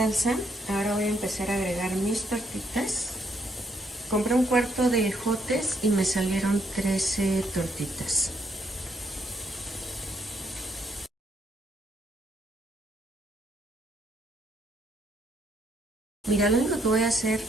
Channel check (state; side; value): normal; both; correlation 0.72